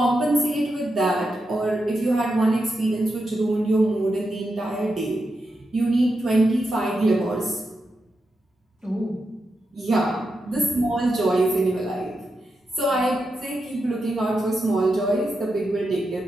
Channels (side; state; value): both; normal; correlation 0.87